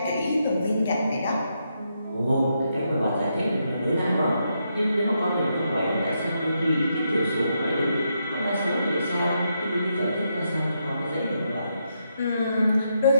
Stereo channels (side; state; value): both; inverted; correlation -0.81